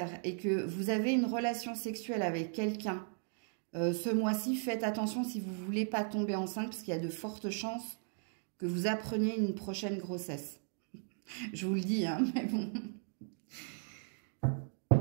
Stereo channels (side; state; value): left; silent; 53 dB below the other